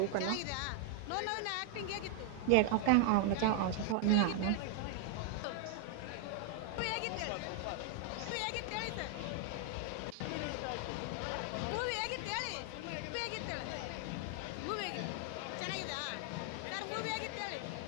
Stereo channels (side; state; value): both; different; correlation 0.00